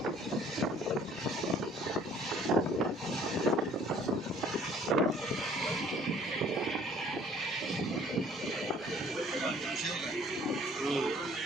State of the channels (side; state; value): both; normal; correlation 0.56